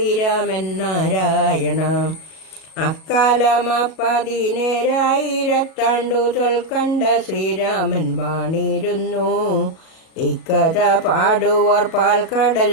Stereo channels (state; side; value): late; right; 37 ms